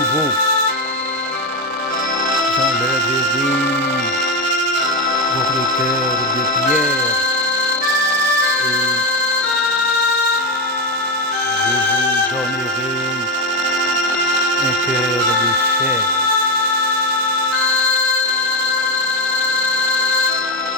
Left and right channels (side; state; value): both; normal; correlation 0.12